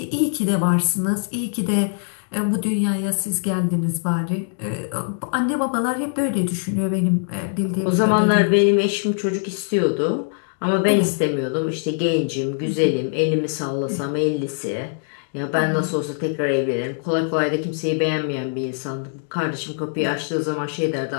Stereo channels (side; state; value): right; silent; digital silence